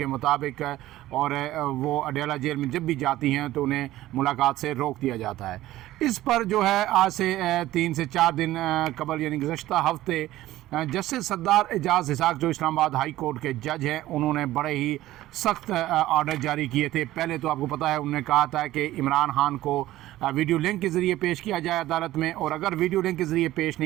मुताबिक, और वो अडयाला जेल में जब भी जाती हैं तो उन्हें मुलाकात से रोक दिया जाता है। इस पर जो है आज से 3 से 4 दिन कबल यानी गुज़श्ता हफ्ते जस्टिस सरदार एजाज़ इसाक जो इस्लामाबाद हाई कोर्ट के जज हैं, उन्होंने बड़े ही सख्त ऑर्डर जारी किए थे। पहले तो आपको पता है उन्होंने कहा था कि इमरान खान को वीडियो लिंक के ज़रिए पेश किया जाए अदालत में, और अगर वीडियो लिंक के ज़रिए पेश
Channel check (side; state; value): left; quieter; 15.4 dB